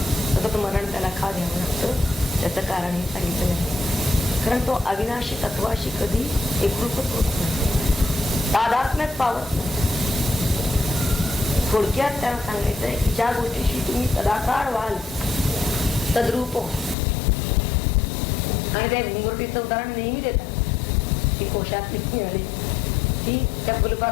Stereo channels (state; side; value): drops out; right; at 16.9 s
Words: सतत मरण त्याला का घ्यावं लागतं? त्याचं कारण हे सांगितलं आहे. कारण तो अविनाशी तत्वाशी कधी एकरूपच होत नाही, तादात्म्यात पावत नाही. थोडक्यात त्याला सांगायचंय की ज्या गोष्टीशी तुम्ही सदाकाळ व्हाल तद्रूप हो. आणि त्या घुंगरुटीचं उदाहरण नेहमी देतात की कोशात किती आली ती त्या